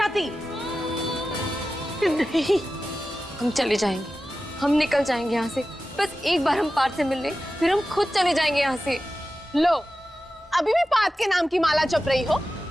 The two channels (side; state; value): both; normal; correlation 0.94